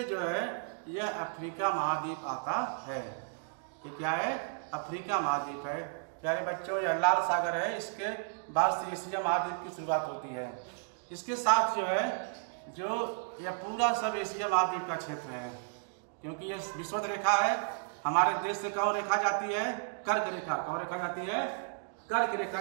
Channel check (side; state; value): left; silent; digital silence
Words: जो है यह अफ्रीका महाद्वीप आता है। ये क्या है? अफ्रीका महाद्वीप है। प्यारे बच्चों, यह लाल सागर है, इसके बाद से एशिया महाद्वीप की शुरुआत होती है। इसके साथ जो है जो यह पूरा सब एशिया महाद्वीप का क्षेत्र है, क्योंकि यह विषुवत रेखा है। हमारे देश से कौन रेखा जाती है? कर्क रेखा। कौन रेखा जाती है? कर्क रेखा